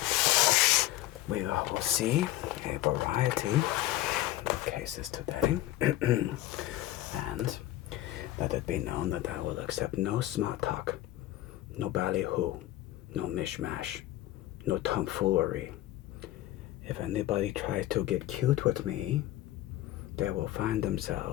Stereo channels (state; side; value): quieter; right; 15.4 dB